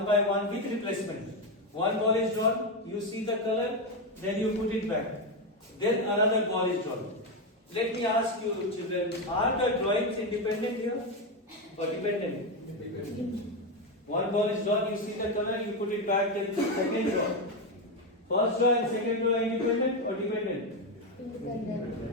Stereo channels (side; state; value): both; normal; correlation 0.09